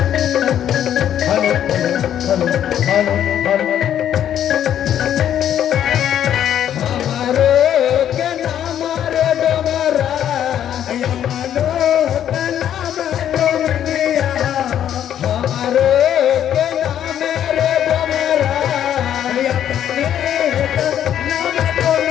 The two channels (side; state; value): right; quieter; 10.3 dB